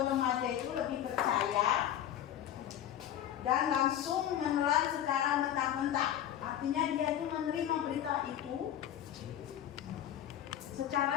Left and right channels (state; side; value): quieter; right; 11.1 dB